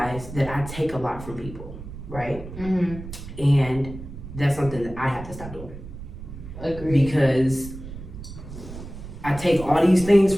that I take a lot from people, right? Mm-hmm. And that's something that I have to stop doing. Agreed. Because I take all these things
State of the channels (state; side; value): noise; right; rumble, 12 dB below the sound